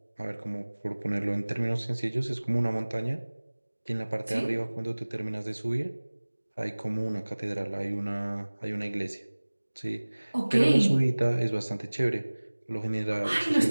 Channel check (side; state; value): both; inverted; correlation -1.00